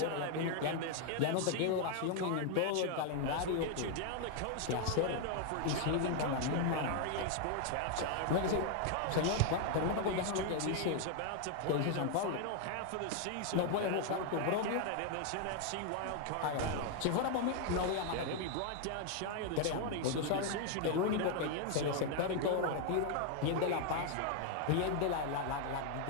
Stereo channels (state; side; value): different; both; correlation 0.00